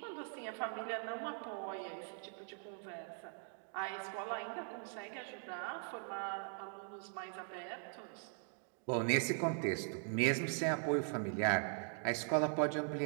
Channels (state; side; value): silent; left; 50 dB below the other